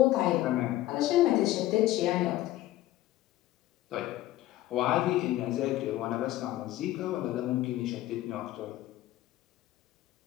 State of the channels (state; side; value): quieter; right; 15.4 dB